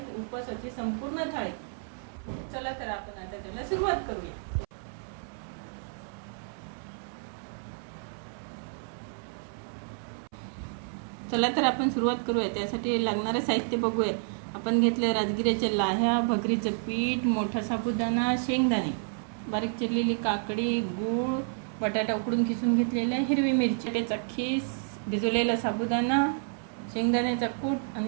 उपवासाची संपूर्ण थाळी। चला तर आपण आता त्याला सुरुवात करूया। चला तर आपण सुरुवात करूया। त्यासाठी लागणारे साहित्य बघूया। आपण घेतले राजगिऱ्याच्या लाह्या, भगरीचं पीठ, मोठा साबुदाणा, शेंगदाणे, बारीक चिरलेली काकडी, गूळ, बटाटा उकडून खिसून घेतलेला, हिरवी मिरची, खीस, भिजवलेला साबुदाणा, शेंगदाण्याचा कूट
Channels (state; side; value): silent; left; 58 dB below the other